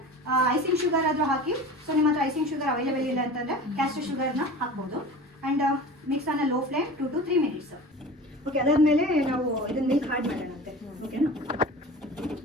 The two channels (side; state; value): both; normal; correlation 0.36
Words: ಐಸಿಂಗ್ ಶುಗರ್ ಆದರೂ ಹಾಕಿ. ಸೊ ನಿಮ್ಮ ಹತ್ರ ಐಸಿಂಗ್ ಶುಗರ್ ಅವೈಲೇಬಲ್ ಇಲ್ಲ ಅಂತಂದರೆ ಕ್ಯಾಸ್ಟರ್ ಶುಗರ್ನ ಹಾಕ್ಬೋದು. And mix on a low flame 2 to 3 minutes. Okay, ಅದಾದಮೇಲೆ ನಾವು ಇದನ್ನ ಮಿಲ್ಕ್ ಹಾಡ್ ಮಾಡೋಣಂತೆ. ಓಕೆನಾ?